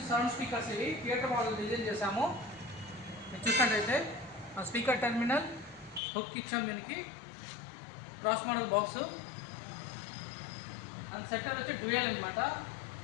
సౌండ్ స్పీకర్స్ ఇవి థియేటర్ మోడల్ డిజైన్ చేసాము. మీరు చూసినట్టయితే స్పీకర్ టెర్మినల్ హుక్ ఇచ్చాము, దీనికి cross model box and setter వచ్చి డ్యూయల్ అనమాట.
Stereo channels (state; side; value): drops out; right; at 6.0 s